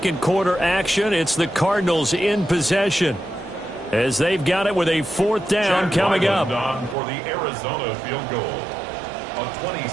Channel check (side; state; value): left; drops out; at 7.0 s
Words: quarter action. It's the Cardinals in possession as they've got it with a 4th down coming up. On for the Arizona field goal. A